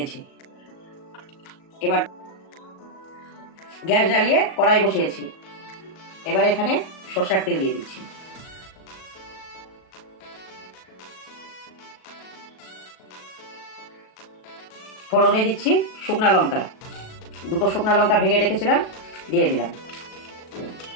এবার গ্যাস জ্বালিয়ে কড়াই বসিয়েছি। এবার এখানে সরষের তেল দিয়ে দিচ্ছি। ফোড়নে দিচ্ছি শুকনা লঙ্কা, দুটো শুকনা লঙ্কা ভেঙে রেখেছিলাম, দিয়ে দিলাম।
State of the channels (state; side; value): late; right; 37 ms